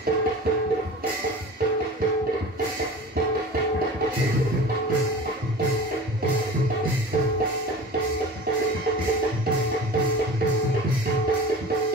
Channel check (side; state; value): both; normal; correlation 0.37